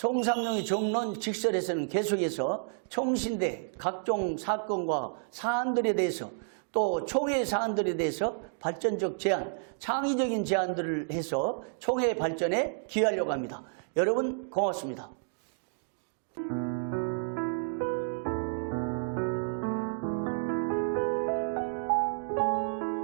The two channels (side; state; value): left; silent; digital silence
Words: 정론 직설에서는 계속해서 총신대 각종 사건과 사안들에 대해서 또 총회 사안들에 대해서 발전적 제안, 창의적인 제안들을 해서 총회 발전에 기여하려고 합니다. 여러분 고맙습니다.